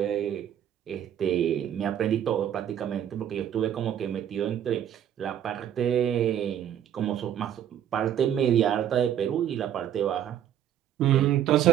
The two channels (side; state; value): left; quieter; 10.2 dB